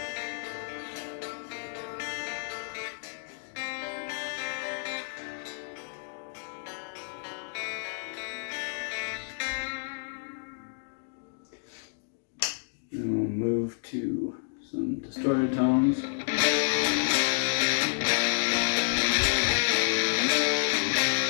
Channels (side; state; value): right; silent; digital silence